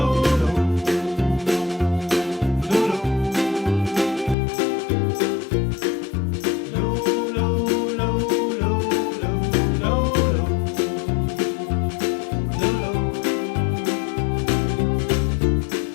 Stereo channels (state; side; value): drops out; right; at 4.4 s